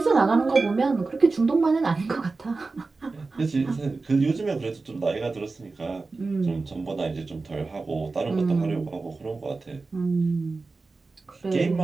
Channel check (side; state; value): left; quieter; 3.8 dB